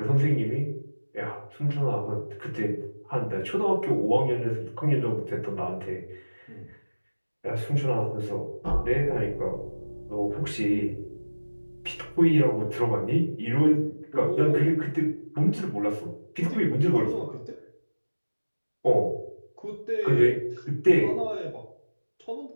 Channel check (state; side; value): inverted; both; correlation -1.00